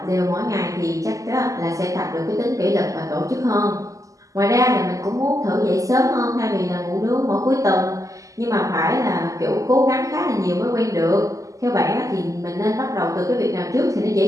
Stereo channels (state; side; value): late; left; 0.16 ms